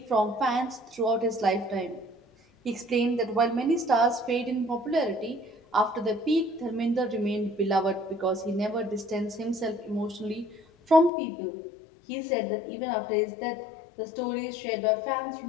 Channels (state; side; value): drops out; right; at 11.1 s